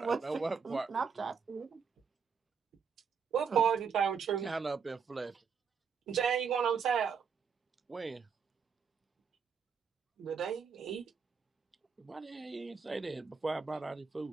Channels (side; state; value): left; quieter; 6.2 dB